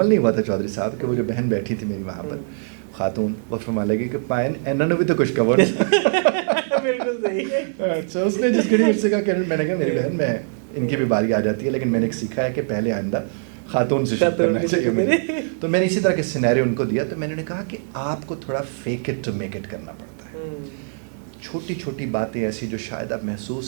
نہیں ہوا تھا چودھری صاحب کہ وہ جو بہن بیٹھی تھی میری وہاں پر خاتون، وہ فرما لگی کہ پائن انہوں نے بھی تو کچھ کور. بالکل صحیح. اچھا، اس نے جس گھڑی مجھ سے کہا کہ میں نے کہا میری بہن، میں ان کی بھی باری آ جاتی ہے، لیکن میں نے سیکھا ہے کہ پہلے آئندہ خاتون سے شروع کرنا چاہیے مجھے. تو میں نے اسی طرح کے سینیریو ان کو دیا. تو میں نے کہا کہ آپ کو تھوڑا fake it to make it کرنا پڑتا ہے. چھوٹی چھوٹی باتیں ایسی جو شاید آپ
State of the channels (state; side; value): silent; left; digital silence